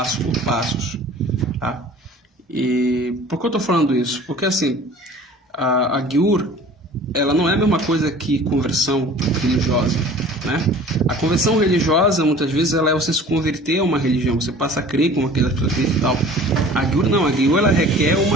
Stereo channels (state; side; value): normal; both; correlation 0.46